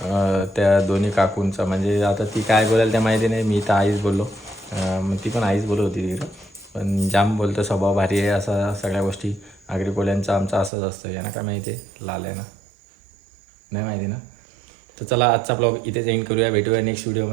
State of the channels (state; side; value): drops out; left; at 10.7 s